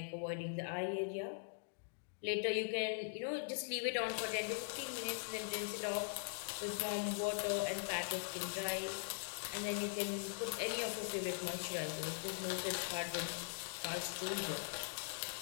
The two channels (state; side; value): silent; right; digital silence